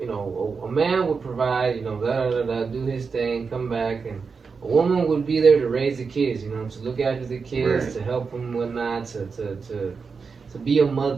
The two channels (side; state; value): left; quieter; 5.2 dB